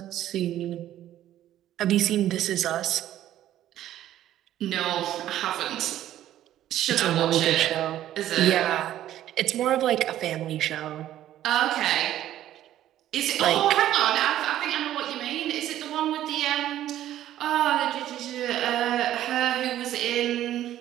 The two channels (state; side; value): quieter; left; 12.6 dB